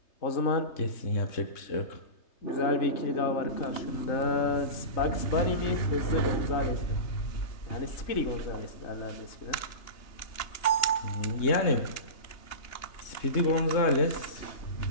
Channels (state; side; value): late; right; 3.3 ms